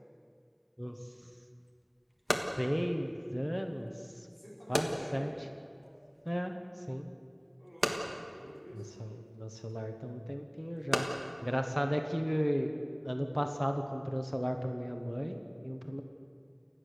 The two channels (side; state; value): both; identical; correlation 1.00